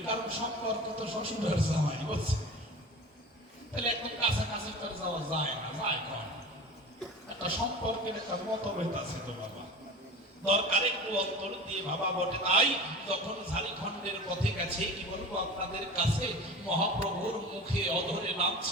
কারণ সম্পর্ক তো শ্বশুরের জামাই বলছে, তাহলে একদম কাছাকাছি করে যাওয়া যায় না, যায় কম একটা সম্পর্কের একটা মতভেদ আছে তো বাবা। দরকার একটু অন্তর দিয়ে ভাবা বটে। তাই যখন ঝাড়খণ্ডের পথে গেছে, কি বলবো আপনাদের কাছে, মহাপ্রভুর মুখে অধরে নাম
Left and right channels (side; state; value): both; normal; correlation 0.34